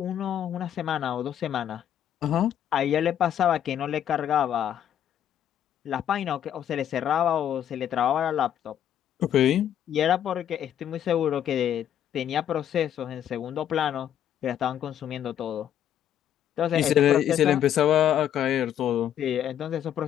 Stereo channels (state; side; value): quieter; right; 10.2 dB